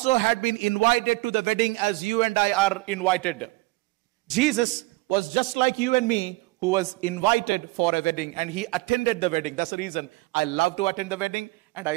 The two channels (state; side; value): quieter; left; 22.8 dB